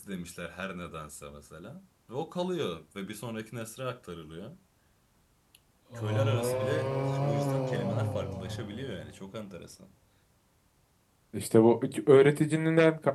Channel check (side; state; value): both; identical; correlation 1.00